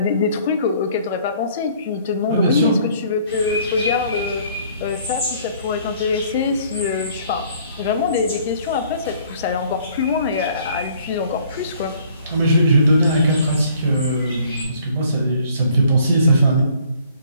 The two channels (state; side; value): inverted; both; correlation -0.58